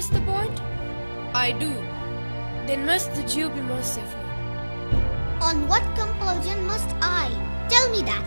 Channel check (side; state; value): both; inverted; correlation -1.00